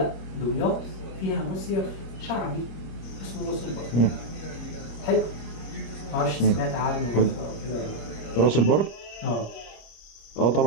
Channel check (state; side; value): late; right; 26 ms